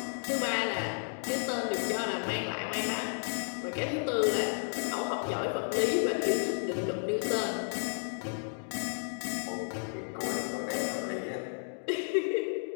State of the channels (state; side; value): silent; right; digital silence